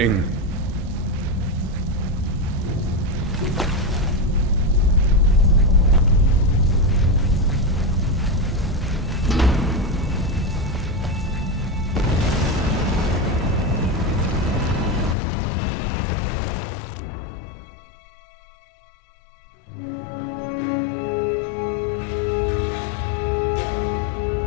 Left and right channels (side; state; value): right; drops out; at 15.2 s